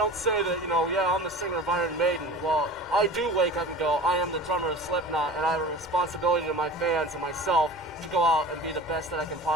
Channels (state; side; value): normal; both; correlation 0.38